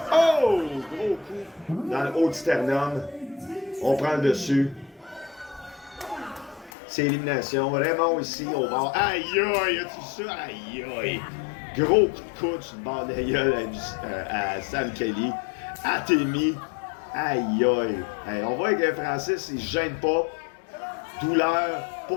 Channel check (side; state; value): right; drops out; at 6.7 s